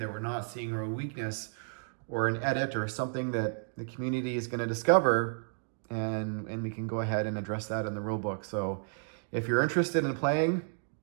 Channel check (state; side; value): silent; left; digital silence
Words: we're not seeing, or a weakness or an edit or something that the community is going to discover, and we can go ahead and address that in the rulebook. So if you're interested in playing